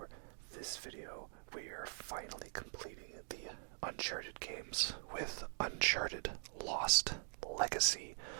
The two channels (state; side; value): silent; left; digital silence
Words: this video, we are finally completing the Uncharted games with Uncharted Lost Legacy,